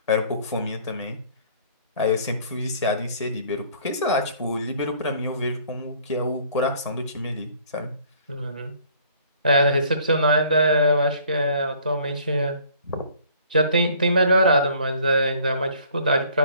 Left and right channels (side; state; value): both; inverted; correlation -0.56